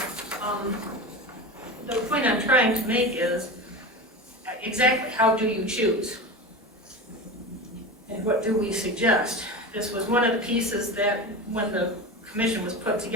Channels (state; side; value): normal; both; correlation 0.27